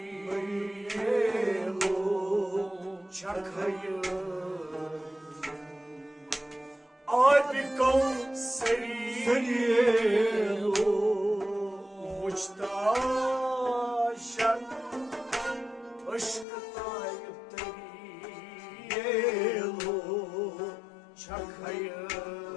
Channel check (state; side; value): drops out; right; at 16.4 s